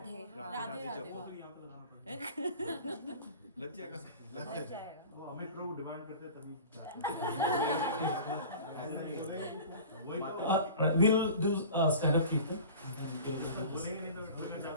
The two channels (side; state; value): both; inverted; correlation -0.39